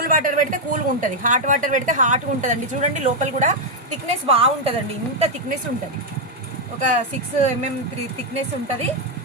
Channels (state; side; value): normal; both; correlation 0.01